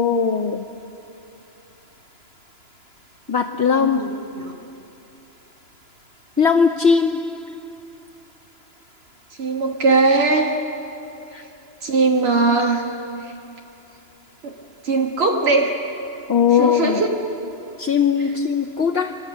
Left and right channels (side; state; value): left; late; 2.9 ms